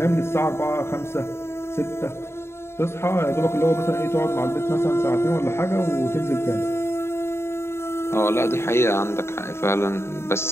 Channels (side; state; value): right; late; 0.12 ms